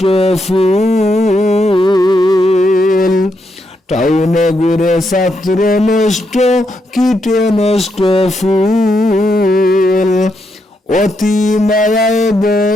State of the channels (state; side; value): normal; both; correlation 0.80